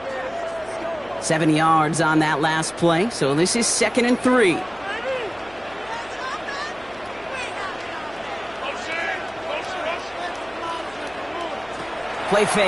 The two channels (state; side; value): noise; left; hum, 26 dB below the sound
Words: 7 yards on that last play, so this is 2nd and 3. Play